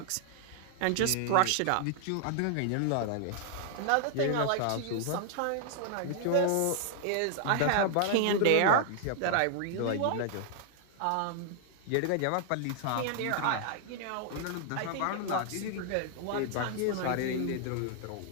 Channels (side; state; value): both; different; correlation 0.00